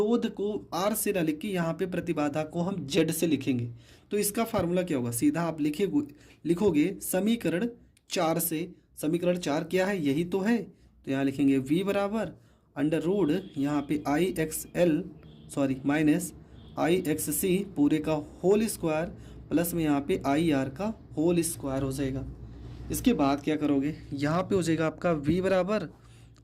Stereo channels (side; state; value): both; identical; correlation 1.00